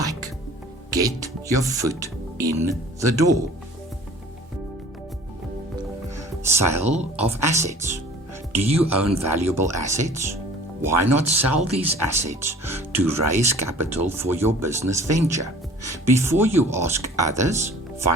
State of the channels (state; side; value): normal; both; correlation 0.47